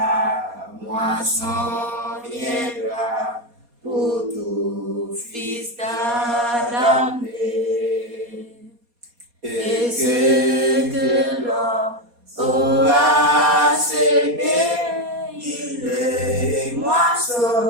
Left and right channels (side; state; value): left; late; 4.2 ms